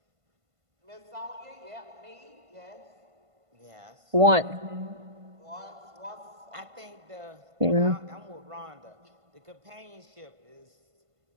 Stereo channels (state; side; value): late; left; 1.5 ms